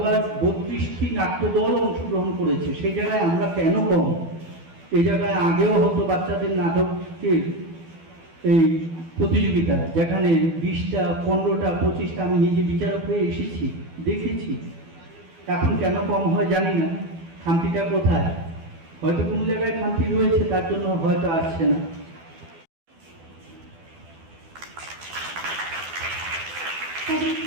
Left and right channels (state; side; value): late; left; 12 ms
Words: 32টি নাট্যদল অংশগ্রহণ করেছে। সেই জায়গায় আমরা কেন কম? এই জায়গায় আগেও হতো বাচ্চাদের নাটকের এই প্রতিযোগিতা, যেখানে 20টা 15টা 25টা, আমি নিজে বিচারক হয়ে এসেছি, দেখেছি। এখন কেন কম হয় জানি না, খামতিটা কোথায়? হয়তো কোনো জায়গায় খামতি রয়েছে, তার জন্য হয়তো আসছে না।